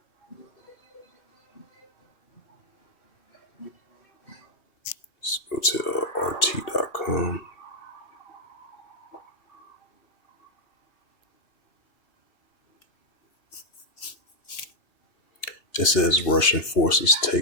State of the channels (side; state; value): right; late; 2.8 ms